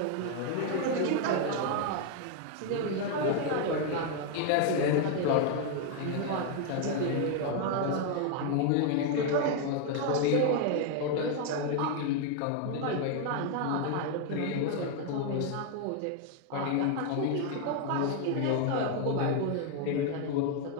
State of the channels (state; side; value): different; both; correlation 0.01